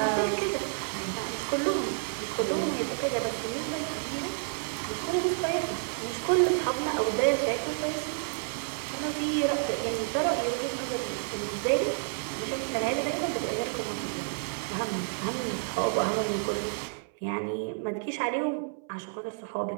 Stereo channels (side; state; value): left; silent; 58 dB below the other